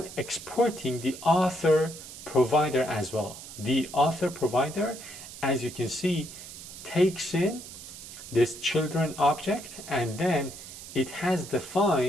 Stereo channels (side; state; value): right; noise; hiss, 13 dB below the sound